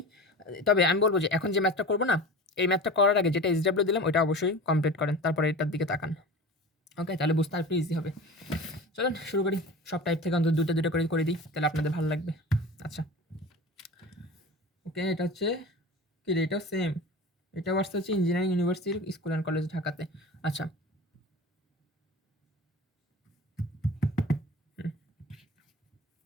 তবে আমি বলবো যে এখন যে ম্যাথটা করবো না, এই ম্যাথটা করার আগে যেটা SW দিলাম ওইটা অবশ্যই কমপ্লিট করেন, তারপরে এটার দিকে তাকান, ওকে, তাহলে বুঝতে আর একটু ইজি হবে। চলেন শুরু করি, সব টাইপ থেকে অন্তত দুটো করে দিই, তাহলে আপনাদের ভালো লাগবে। আচ্ছা ওকে, এটা হচ্ছে কি রে, এটাও সেম, এটা আসতে হচ্ছে engineering university school and college ঢাকাতে। আচ্ছা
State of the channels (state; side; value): normal; both; correlation 0.34